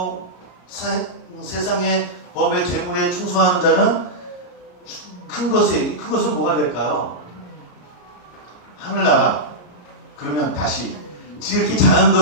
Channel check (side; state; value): right; late; 33 ms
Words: 세상의 법의 재물에 충성하는 자는 큰 것은 뭐가 될까요? 하늘나라. 그러면 다시 지극히 작은